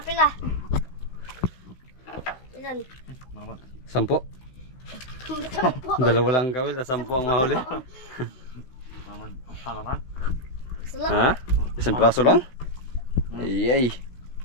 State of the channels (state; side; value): late; right; 16 ms